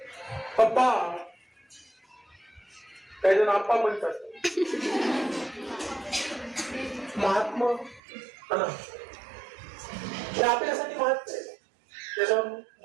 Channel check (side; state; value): left; drops out; at 8.0 s